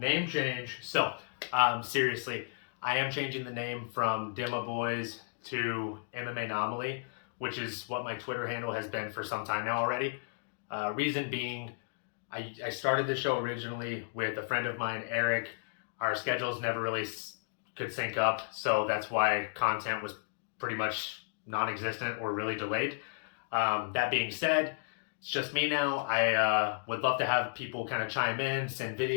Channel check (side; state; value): right; silent; digital silence